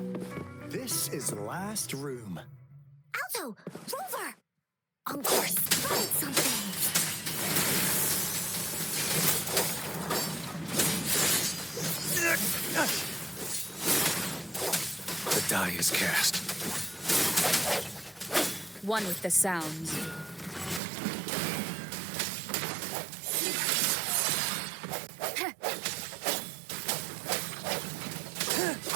this is the last room. Alto! Rover! Encore spotted something! The die is cast. One with the sounds.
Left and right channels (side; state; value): left; drops out; at 20.8 s